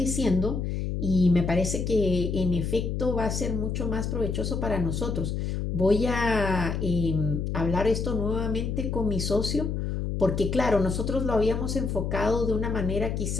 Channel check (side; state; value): left; noise; hum, 2 dB below the sound